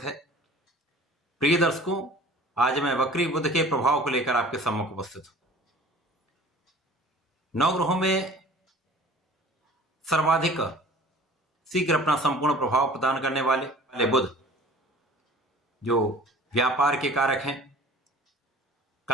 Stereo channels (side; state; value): both; normal; correlation 0.46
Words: है। प्रिय दर्शकों, आज मैं वक्री बुध के प्रभाव को लेकर आपके सम्मुख उपस्थित हूं। नवग्रहों में सर्वाधिक शीघ्र अपना संपूर्ण प्रभाव प्रदान करने वाले बुध जो व्यापार के कारक हैं,